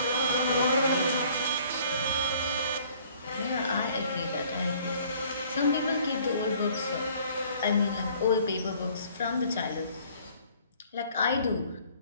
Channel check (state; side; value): inverted; both; correlation -0.57